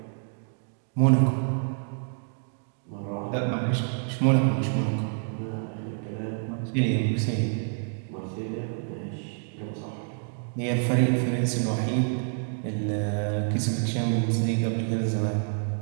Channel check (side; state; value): left; silent; 57 dB below the other